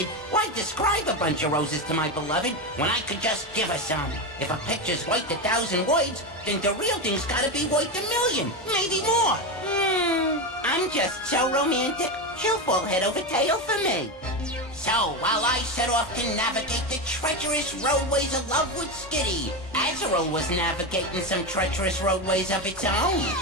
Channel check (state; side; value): normal; both; correlation 0.15